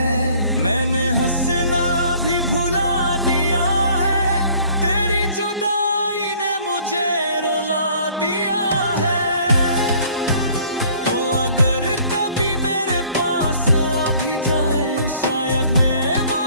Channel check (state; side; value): inverted; both; correlation -0.56